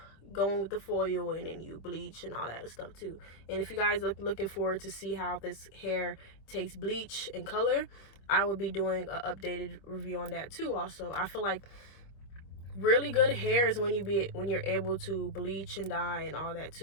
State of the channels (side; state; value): right; late; 25 ms